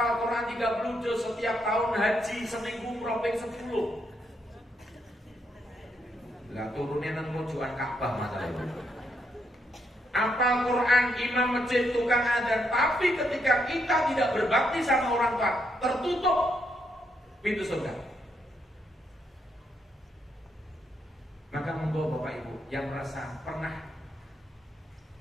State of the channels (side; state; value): both; normal; correlation 0.77